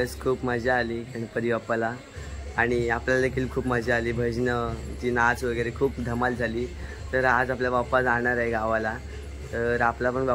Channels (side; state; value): both; identical; correlation 1.00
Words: खूप मजा आली गणपती बाप्पाला आणि आपल्याला देखील खूप मजा आली. भजनं, जी नाच वगैरे खूप धमाल झाली. तर आज आपला बाप्पा जाणार आहे गावाला. तर आपला पण